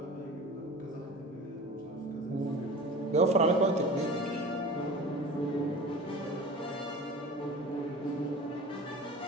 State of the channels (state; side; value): normal; both; correlation 0.37